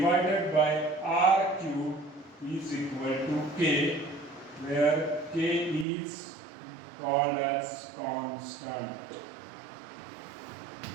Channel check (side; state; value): left; drops out; at 5.9 s